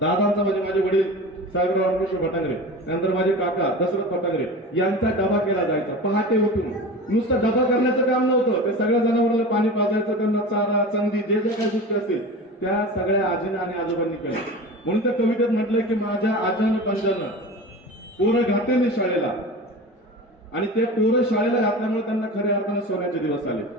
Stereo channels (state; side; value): normal; both; correlation 0.32